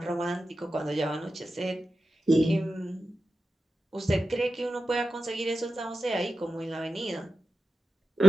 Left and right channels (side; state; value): both; normal; correlation 0.92